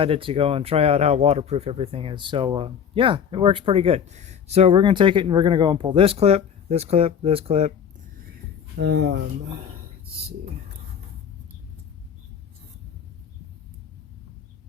to go and try out how waterproof everything is, so yeah, it works pretty good. So we're going to take it and we're going to go and pull this clip, this clip, this clip. Let's see.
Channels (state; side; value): quieter; right; 7.8 dB